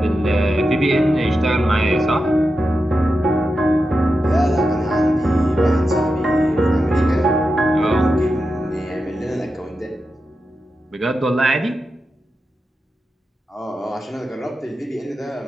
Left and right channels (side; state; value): both; normal; correlation 0.90